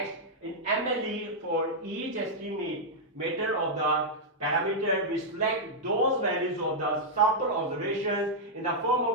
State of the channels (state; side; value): normal; both; correlation -0.05